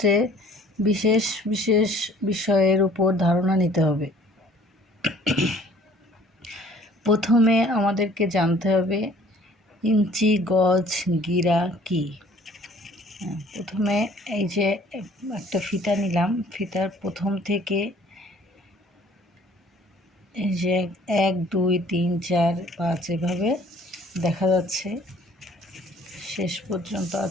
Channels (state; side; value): normal; both; correlation 0.55